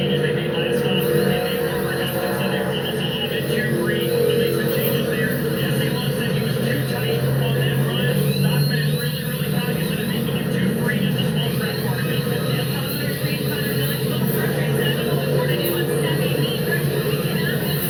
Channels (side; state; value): both; identical; correlation 1.00